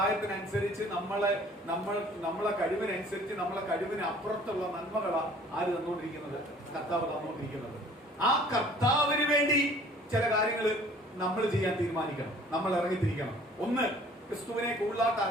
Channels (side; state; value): both; normal; correlation 0.53